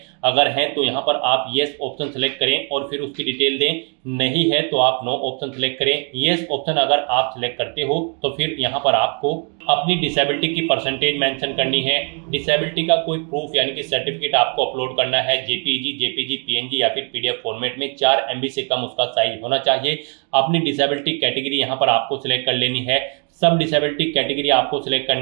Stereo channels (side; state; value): left; quieter; 39.6 dB